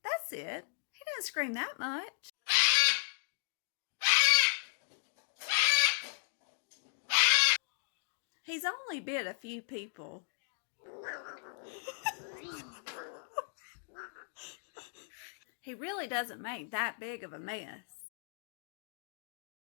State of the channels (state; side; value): silent; right; digital silence